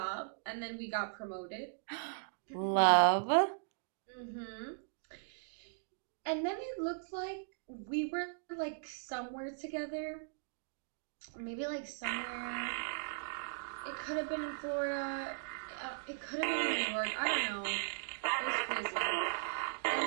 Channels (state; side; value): silent; left; digital silence